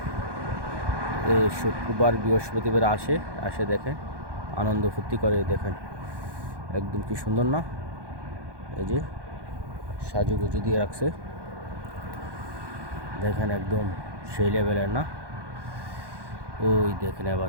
শুক্রবার বৃহস্পতিবার আসে দেখেন, আনন্দ ফুর্তি করে। দেখেন একদম কি সুন্দর না? এই যে সাজুগুজু দিয়ে রাখছে, দেখেন একদম সেই লেভেলের না? ওই দেখেন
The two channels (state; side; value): late; left; 1.2 ms